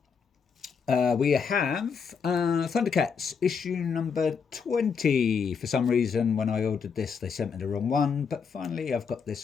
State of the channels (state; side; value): quieter; right; 6.1 dB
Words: We have Thundercats issue number 20. For some reason, when I ordered this, they sent me the wrong one, but finally I've got